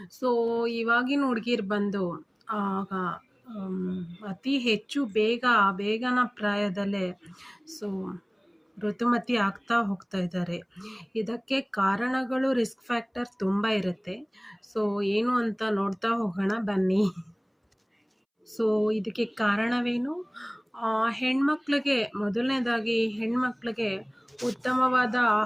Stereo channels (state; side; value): identical; both; correlation 1.00